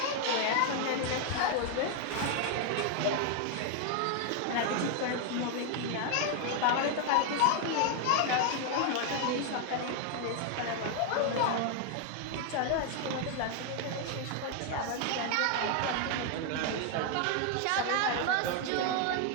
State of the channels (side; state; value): both; different; correlation 0.00